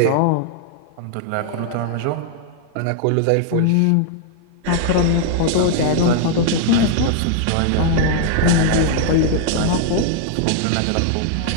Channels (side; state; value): both; different; correlation 0.00